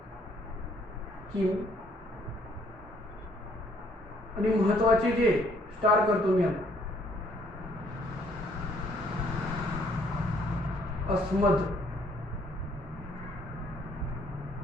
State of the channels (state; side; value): normal; both; correlation 0.65